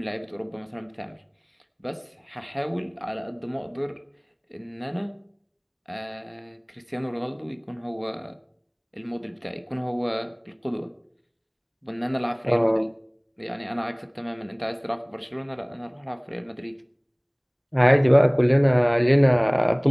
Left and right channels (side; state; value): both; identical; correlation 1.00